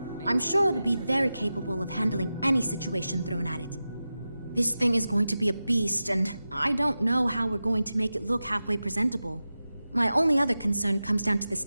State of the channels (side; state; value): both; inverted; correlation -0.93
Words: I'm sure it'll be very capable of handling any situation thrown at it. This thing is going to be a beast, and I don't know how we're going to make it look halfway presentable. My only other concern comes down to the